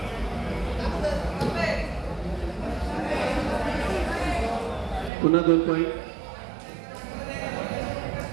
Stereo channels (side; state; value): left; drops out; at 5.1 s